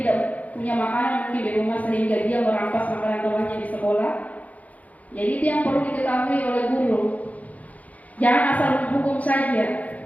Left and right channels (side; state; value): right; late; 0.072 ms